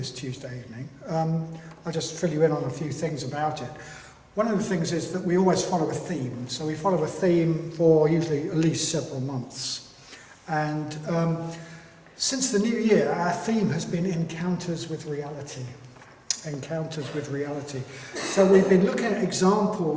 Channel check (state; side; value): identical; both; correlation 1.00